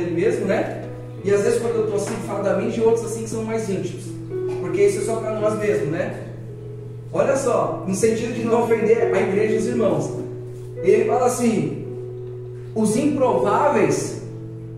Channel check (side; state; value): both; identical; correlation 1.00